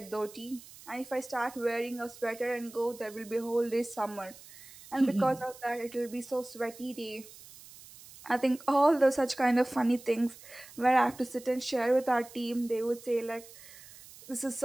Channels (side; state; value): right; noise; hiss, 19 dB below the sound